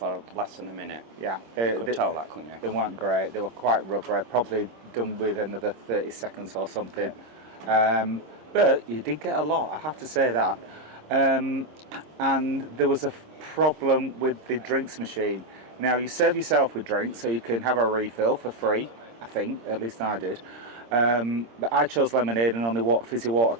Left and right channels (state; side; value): late; left; 26 ms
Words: less than a minute. Yeah, You could tell that, couldn't you? They weren't great. They were quite rubbery. Probably done with another 30 seconds or something. But you did get a lot, I have to say that. And there was a problem with the drinks machine. Now you serve yourself with drinks, so you can have a refill for free. I think, at least I did. But I chose lemonade, and only fizzy water